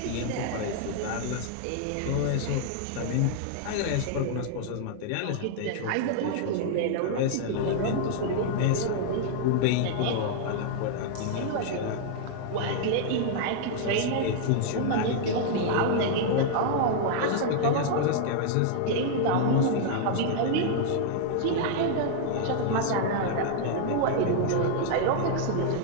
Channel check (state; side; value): different; both; correlation -0.01